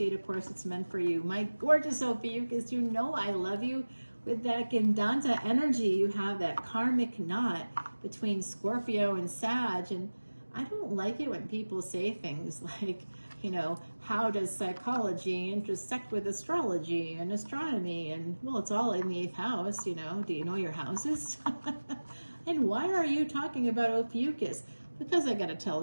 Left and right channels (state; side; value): inverted; both; correlation -1.00